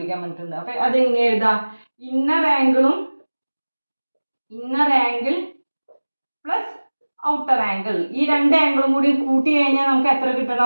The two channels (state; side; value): inverted; both; correlation -1.00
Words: പറഞ്ഞിട്ടുണ്ട്. അപ്പോൾ അതെങ്ങനെ എഴുതാം? Inner angle plus outer angle. ഈ രണ്ട് ആംഗിളും കൂടി കൂട്ടി കഴിഞ്ഞാൽ നമുക്ക് എത്ര